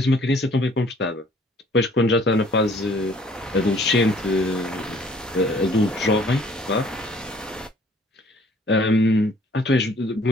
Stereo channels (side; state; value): both; normal; correlation 0.58